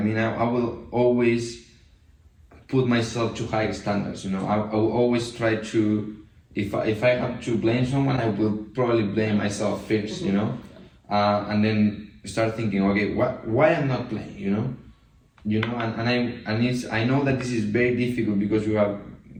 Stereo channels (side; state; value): both; identical; correlation 1.00